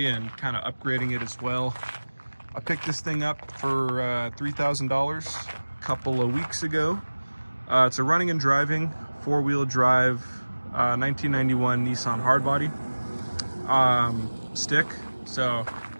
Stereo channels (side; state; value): both; inverted; correlation -1.00